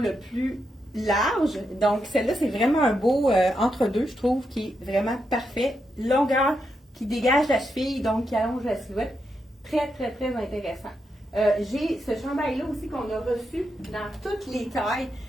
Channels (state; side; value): normal; both; correlation 0.84